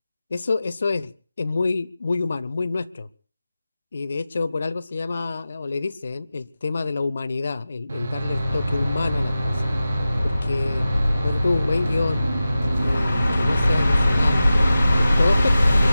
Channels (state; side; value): inverted; both; correlation -0.94